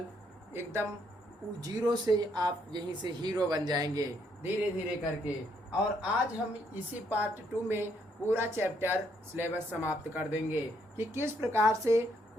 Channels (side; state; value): both; normal; correlation 0.72